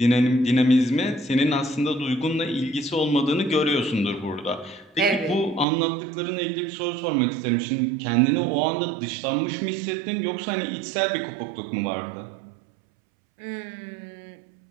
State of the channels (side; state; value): left; drops out; at 5.7 s